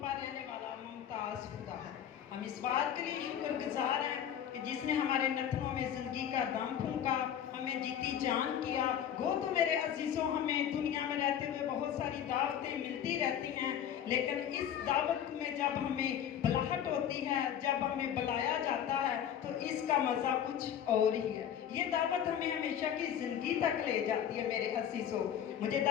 पर रहने वाला मुमताज खुदा है। हम इस बात के लिए शुक्रगुजार हैं कि जिसने हमारे नथनों में जिंदगी का दम फूंका, हमें जीती जान किया। वो तो मेरे अजीजों, हमें दुनिया में रहते हुए बहुत सारी दावतें मिलती रहती हैं, लेकिन इस दावत में जब हमें बुलाहट होती है, जब हमें बुलाया जाता है, तो इसका मज़ा कुछ और ही है। ये दावत हमें हमेशा की ज़िंदगी तक ले जाती है मेरे अजीजों। मुझे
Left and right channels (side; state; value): right; quieter; 9.6 dB